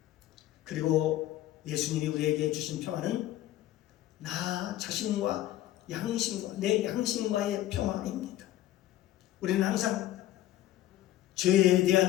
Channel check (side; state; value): right; quieter; 14.0 dB